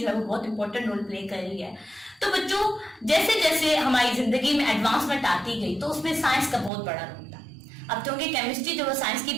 है वो बहुत इंपॉर्टेंट रोल प्ले कर रही है। तो बच्चों, जैसे जैसे हमारी जिंदगी में एडवांसमेंट आती गई तो उसमें साइंस का बहुत बड़ा रोल था। अब क्योंकि केमिस्ट्री जो वो साइंस की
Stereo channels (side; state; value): left; drops out; at 6.7 s